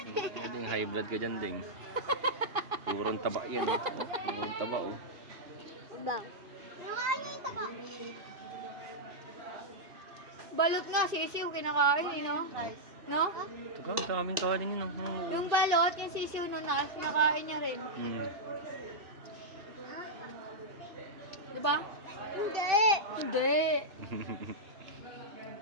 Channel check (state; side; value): late; left; 2.6 ms